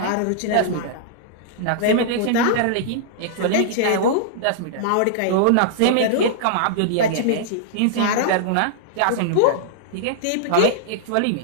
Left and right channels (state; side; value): different; both; correlation -0.02